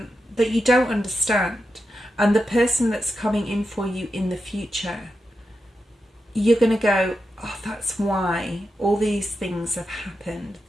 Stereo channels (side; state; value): both; normal; correlation 0.88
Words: you don't understand. And the person that's coming in for you in the future, you're going to go, oh, that's why all these things have happened.